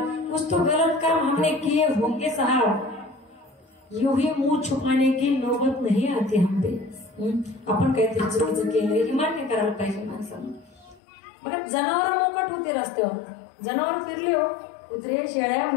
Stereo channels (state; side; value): drops out; right; at 11.0 s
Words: कुछ तो गलत काम हमने किए होंगे साहब यूं ही मुंह छुपाने की नौबत नहीं आती हम पे. आपण काहीतरी चुकीचं केलं हे मान्य करायला पाहिजे माणसानं. बघा जनावर मोकट होते रस्त्यावर जनावर फिरले हो कुत्रे शेळ्या